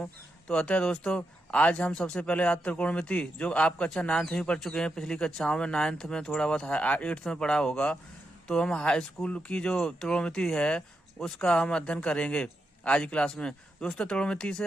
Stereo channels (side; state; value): both; normal; correlation 0.85